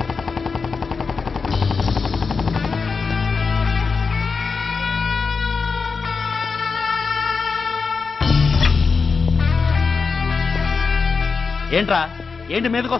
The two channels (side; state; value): right; quieter; 4.9 dB